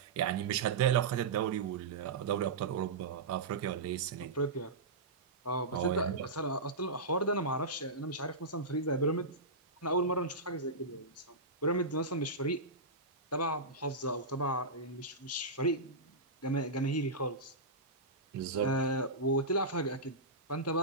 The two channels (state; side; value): quieter; left; 3.3 dB